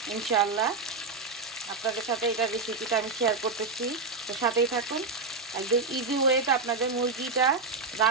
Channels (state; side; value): quieter; left; 4.1 dB